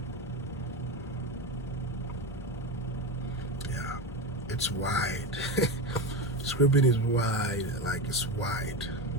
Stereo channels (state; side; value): normal; both; correlation 0.19